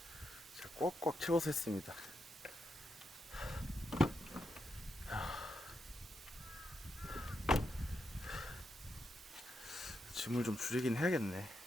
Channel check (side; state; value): both; normal; correlation 0.84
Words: 제가 꽉꽉 채워서 했습니다. 짐을 좀 줄이긴 해야겠네.